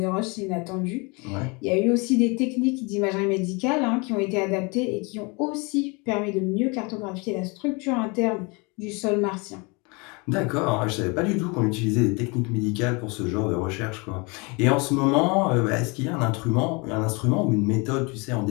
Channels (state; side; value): quieter; right; 29.2 dB